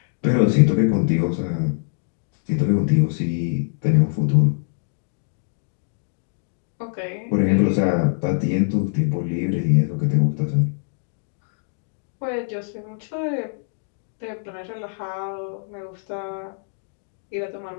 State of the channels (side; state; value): right; silent; digital silence